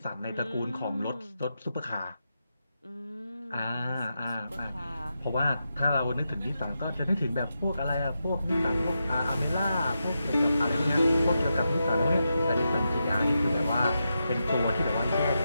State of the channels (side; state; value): both; inverted; correlation -0.87